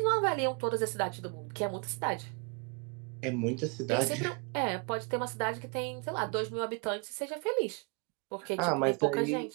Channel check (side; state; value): left; quieter; 34.5 dB